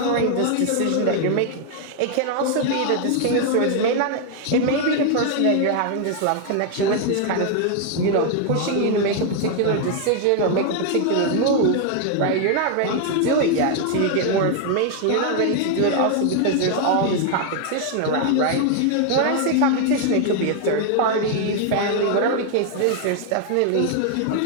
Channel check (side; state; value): both; different; correlation 0.00